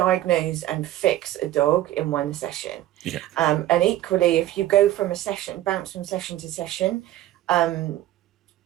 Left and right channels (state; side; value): quieter; left; 14.1 dB